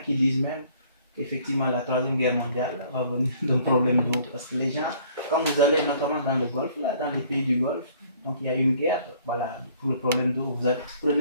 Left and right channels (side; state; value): both; inverted; correlation -0.58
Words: disent même qu'effectivement la troisième guerre mondiale va venir d'un problème d'eau, parce que les gens, quand vous allez notamment dans le Golfe, là, dans les pays du Golfe, donc il y a une guerre, voilà, pour le problème d'eau, vous